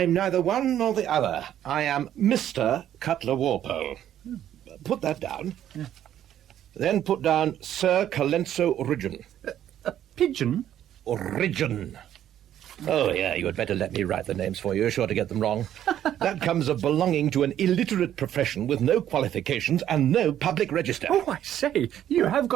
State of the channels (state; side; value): quieter; left; 11.1 dB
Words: neither one nor the other. I am Mr. Cutler Walpole. Put that down. Yeah. Then put down Sir Colenso Ridgeon. A pigeon? Ridgeon. Oh, yeah, you had better let me write the names for you. You're sure to get them wrong. That comes of belonging to an illiterate profession with no qualifications and no public register. Oh, I say, you have